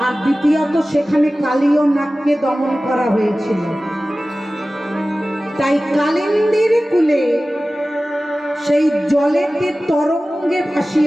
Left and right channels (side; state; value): both; normal; correlation 0.96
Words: আর দ্বিতীয়ত সেখানে কালীয় নাগকে দমন করা হয়েছিল। তাই কালিন্দীর কূলে সেই জলেতে তরঙ্গে